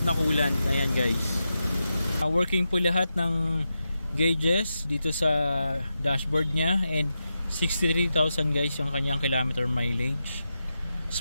na coolant. Ayan guys. Working po lahat ng gauges dito sa dashboard niya and 63,000 guys yung kanyang kilometer mileage.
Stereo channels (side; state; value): both; inverted; correlation -0.89